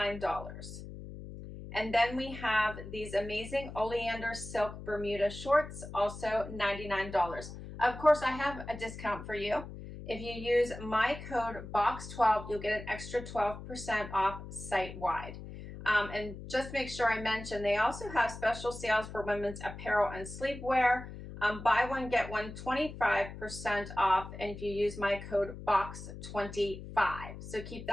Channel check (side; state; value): left; noise; hum, 11 dB below the sound